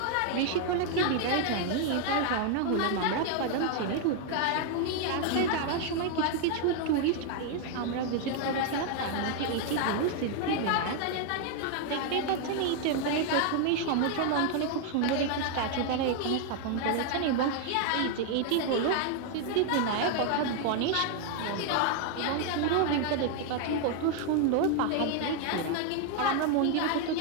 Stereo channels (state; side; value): different; both; correlation 0.00